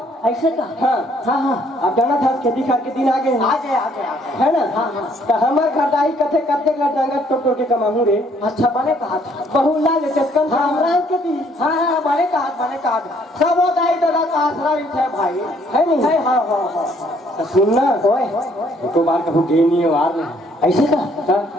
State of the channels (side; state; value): both; normal; correlation 0.65